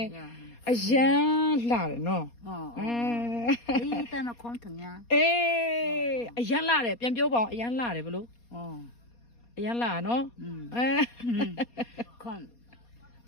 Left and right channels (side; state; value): right; late; 4.2 ms